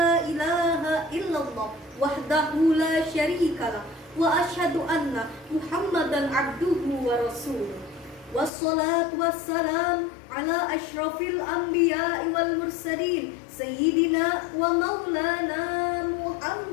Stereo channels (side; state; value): right; drops out; at 8.5 s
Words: ilaha illallah wahdahu la syarikalah wa asyhadu anna Muhammadan abduhu wa rasuluh. Wassalatu wassalam ala asyrafil anbiya'i wal mursalin sayyidina wa maulana